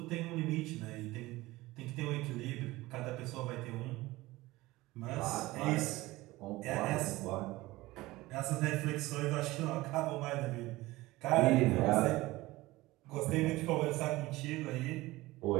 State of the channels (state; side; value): quieter; left; 19.3 dB